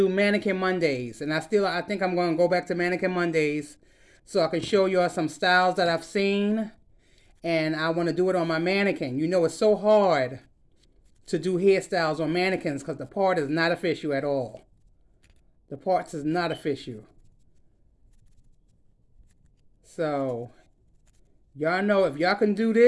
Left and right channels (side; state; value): both; identical; correlation 1.00